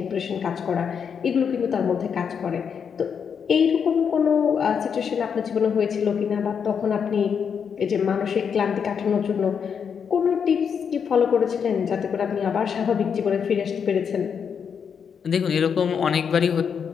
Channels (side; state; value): right; quieter; 7.0 dB